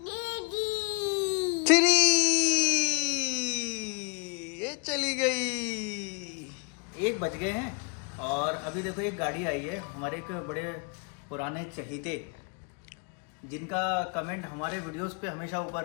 3। ये चली गई। 1 बज गए हैं और अभी देखो एक गाड़ी आई है। हमारे एक बड़े पुराने चहीते जिनका कमेंट हमारे वीडियोस पे हमेशा ऊपर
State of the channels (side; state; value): right; quieter; 35.8 dB